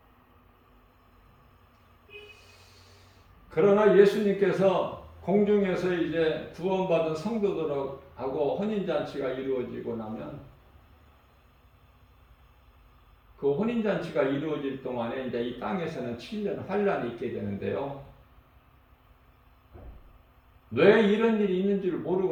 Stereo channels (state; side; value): identical; both; correlation 1.00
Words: 그러나 예수님께서 공중에서 이제 구원받은 성도들하고 혼인잔치가 이루어지고 나면, 그 혼인잔치가 이루어질 동안에 이제 이 땅에서는 7년 환란이 있게 되는데요. 왜 이런 일이 있는 줄